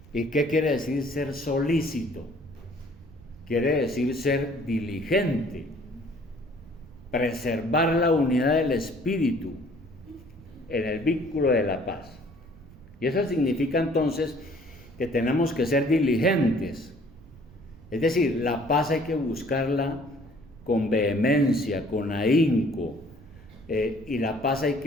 ¿Y qué quiere decir ser solícito? Quiere decir ser diligente, preservar la unidad del Espíritu en el vínculo de la paz. Y eso significa entonces que tenemos que ser diligentes. Es decir, la paz hay que buscarla con vehemencia, con ahínco, y la paz hay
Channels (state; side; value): noise; right; rumble, 22 dB below the sound